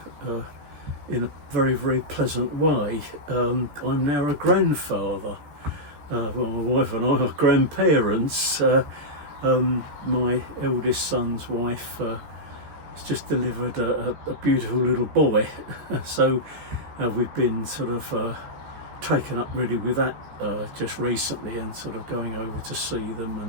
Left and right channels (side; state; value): left; late; 14 ms